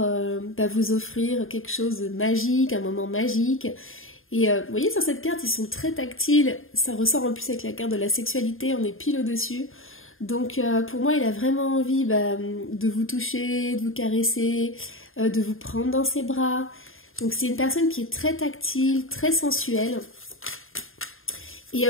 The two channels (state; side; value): late; right; 0.60 ms